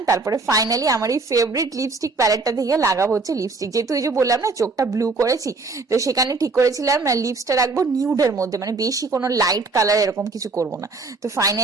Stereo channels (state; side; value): quieter; left; 3.9 dB